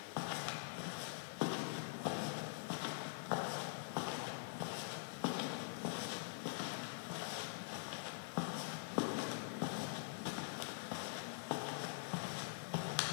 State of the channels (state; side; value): silent; right; digital silence